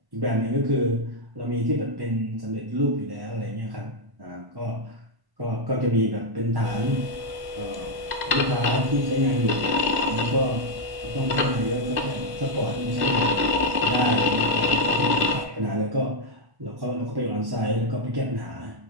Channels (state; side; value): late; left; 1.1 ms